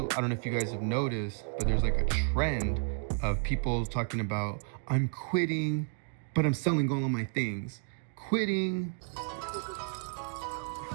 I don't know if you guys have noticed, but there's like a trend of people talking about, I'm quitting, but I'm selling all of my things. Quitting.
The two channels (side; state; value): left; silent; 57 dB below the other